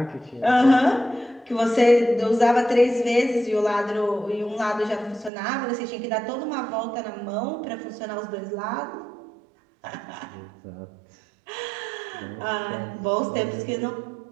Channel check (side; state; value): left; drops out; at 5.3 s